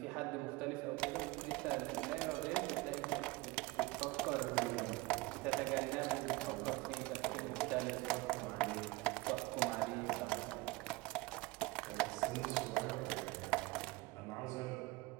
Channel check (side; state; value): left; quieter; 22.4 dB